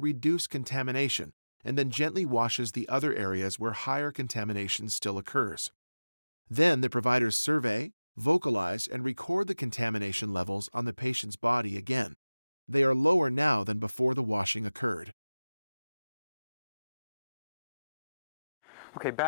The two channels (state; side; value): inverted; both; correlation -0.98